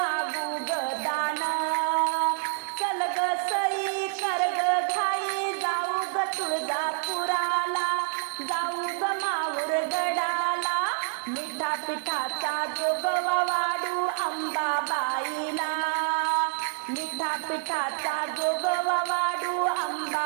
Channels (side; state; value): left; silent; digital silence